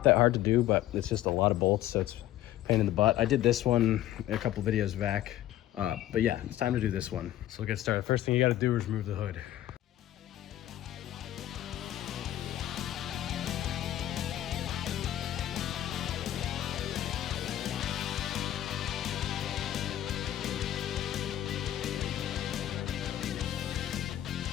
that hard to do, but it's just a lot of bolts, so it's a pain in the butt. I did this one a couple videos back, but yeah, it's time to do this one. So we'll get started. First thing you gotta do is remove the hood.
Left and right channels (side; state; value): right; quieter; 13.1 dB